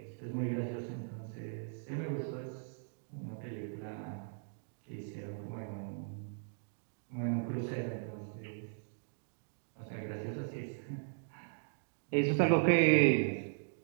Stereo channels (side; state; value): left; silent; digital silence